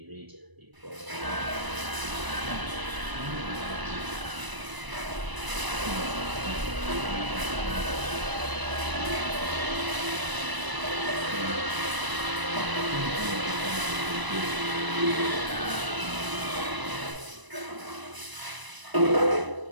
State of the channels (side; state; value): left; late; 1.0 ms